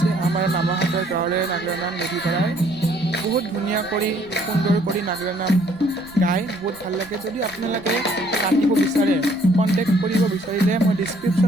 আমাৰ মামাহঁতৰ গাঁৱৰে নাগৰা নাম মেধিপাৰাৰ। বহুত ধুনীয়া কৰি সুন্দৰ কৰি নাগাৰা নাম গাই বহুত ভাল লাগে। যদি আপোনালোকে মাতিব বিচাৰে কণ্টেক্ট কৰিব বিচাৰিলে মই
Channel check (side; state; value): right; noise; rumble, 26 dB below the sound